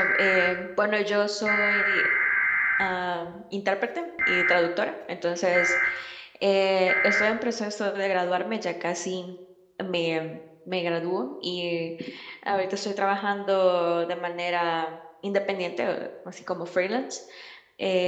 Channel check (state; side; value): identical; both; correlation 1.00